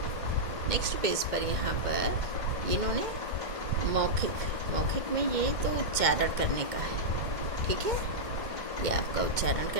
नेक्स्ट पेज पर यहाँ पर इन्होंने मौखिक में ये तो उच्चारण करने का है। ठीक है। ये आपका उच्चारण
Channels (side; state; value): left; late; 2.1 ms